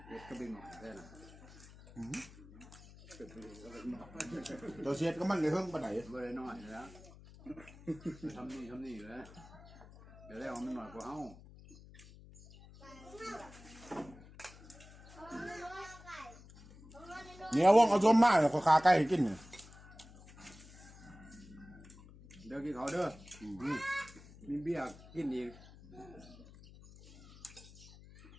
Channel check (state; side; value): noise; left; hum, 19 dB below the sound